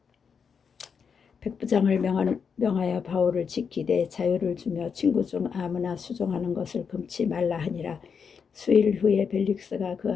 백부장을 명하여 바울을 지키되 자유를 주며 친구 중 아무나 수종하는 것을 금치 말라 하니라. 수일 후에 벨릭스가 그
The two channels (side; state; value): right; quieter; 6.3 dB